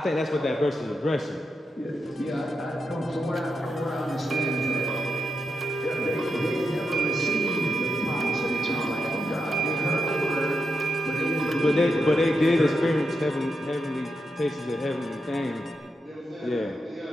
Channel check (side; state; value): both; normal; correlation 0.85